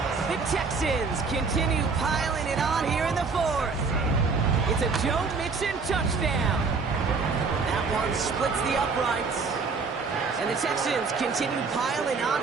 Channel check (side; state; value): left; quieter; 4.7 dB